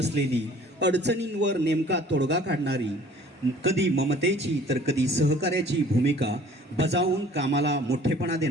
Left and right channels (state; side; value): normal; both; correlation 0.51